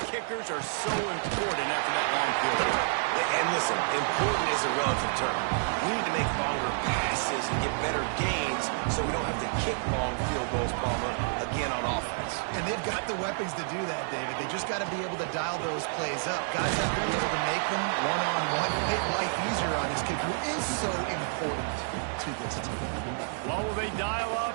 kickers are so important after that long field goal. And listen, important is a relative term. We need to make longer passes and get better gains so we don't have to kick long field goals, Palmer, again on offense. And they've got the weapons to do that, David. They just got to be able to dial those plays up. Guys have to be able to make them one-on-one, make life easier on his kicker, who is so important to this team. What will they dial up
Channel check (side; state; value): left; silent; digital silence